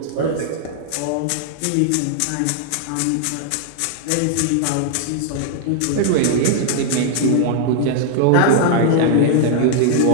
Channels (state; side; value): different; both; correlation -0.01